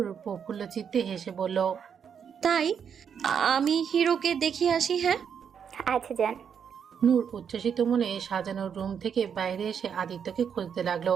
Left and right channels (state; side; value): quieter; left; 7.5 dB